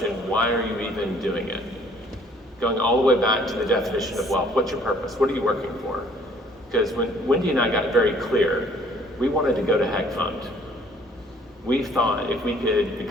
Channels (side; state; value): both; normal; correlation 0.58